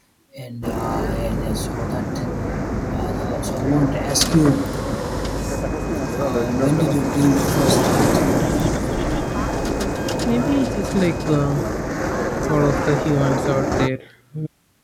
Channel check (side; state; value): both; identical; correlation 1.00